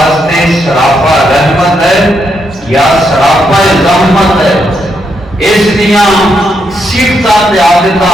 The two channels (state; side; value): normal; both; correlation 0.79